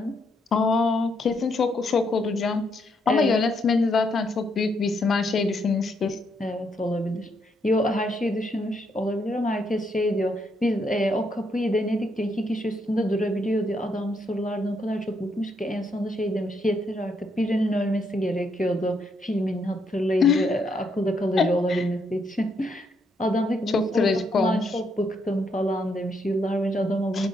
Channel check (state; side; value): normal; both; correlation 0.76